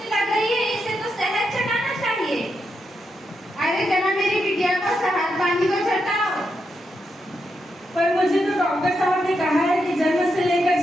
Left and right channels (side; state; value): both; normal; correlation 0.84